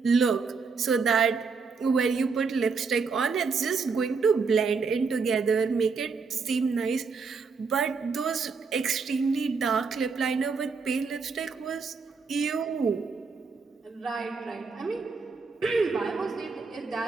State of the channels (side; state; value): left; quieter; 5.0 dB